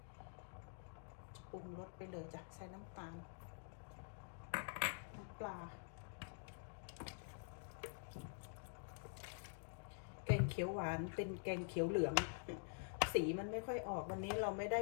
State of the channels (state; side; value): silent; right; digital silence